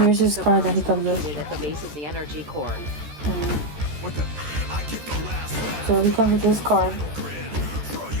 here's his card that he comes with. At the base of the energy core. So he comes with this card.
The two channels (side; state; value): left; late; 13 ms